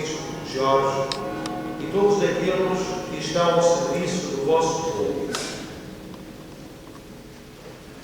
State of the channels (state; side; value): identical; both; correlation 1.00